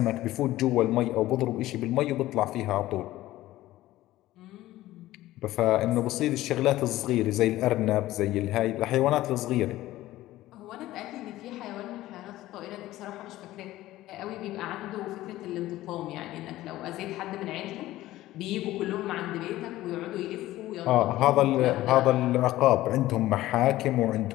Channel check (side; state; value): right; quieter; 15.9 dB